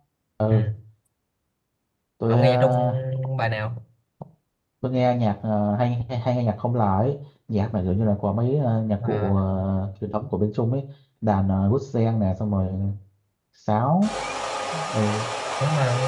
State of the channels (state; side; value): identical; both; correlation 1.00